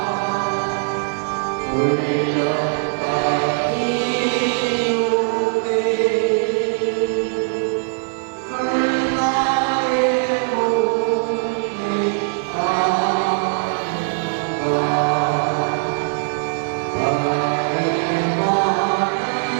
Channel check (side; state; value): left; silent; digital silence